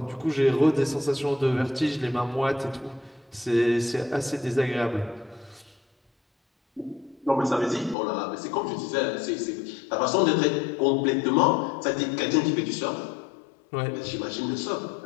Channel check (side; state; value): right; drops out; at 8.0 s